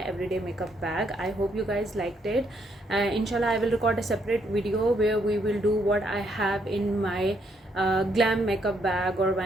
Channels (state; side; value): normal; both; correlation 0.73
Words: everyday makeup bag. I hope you guys liked it. Inshallah, I will record a separate video where we will do what I have in my glam makeup bag, or